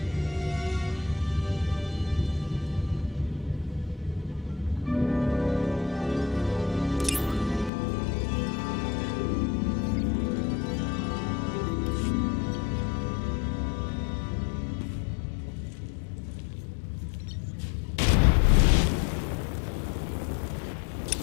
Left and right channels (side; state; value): right; drops out; at 7.7 s